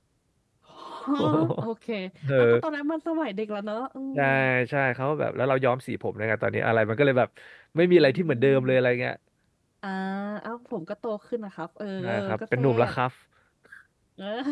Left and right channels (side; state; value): both; identical; correlation 1.00